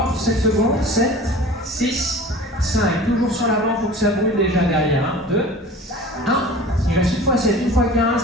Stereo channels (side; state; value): both; normal; correlation 0.40